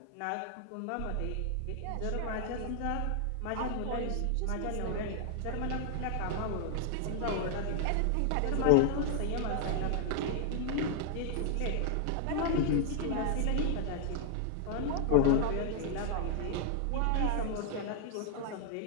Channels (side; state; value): both; different; correlation 0.00